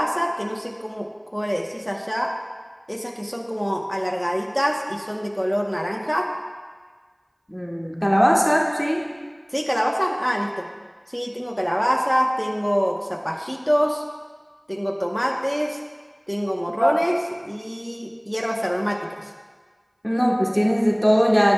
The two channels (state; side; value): identical; both; correlation 1.00